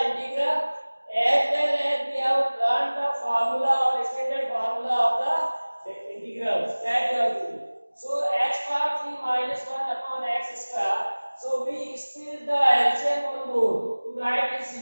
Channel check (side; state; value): both; inverted; correlation -1.00